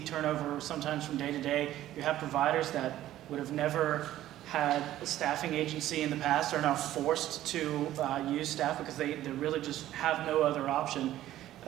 turnover sometimes from day to day. You have providers that would have never had a staffing agency in the past are now forced to use staff because they really just have no other option.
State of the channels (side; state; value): left; quieter; 13.6 dB